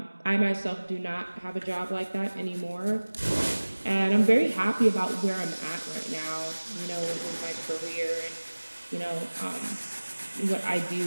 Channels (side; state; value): both; inverted; correlation -1.00